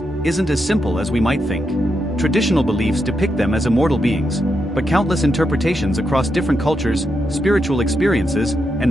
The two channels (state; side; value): normal; both; correlation 0.83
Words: isn't as simple as we might think. Traditional beliefs depict them as immortal beings, but countless interpretations across different cultures, spiritual experiences,